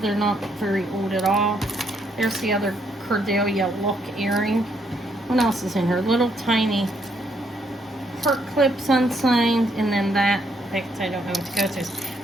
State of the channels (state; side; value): normal; both; correlation 0.73